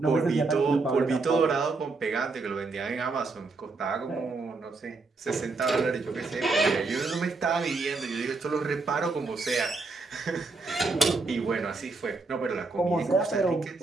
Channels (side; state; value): left; quieter; 3.8 dB